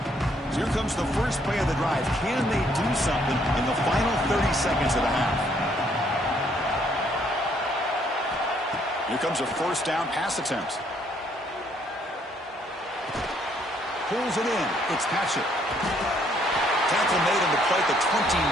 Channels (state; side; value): normal; both; correlation 0.67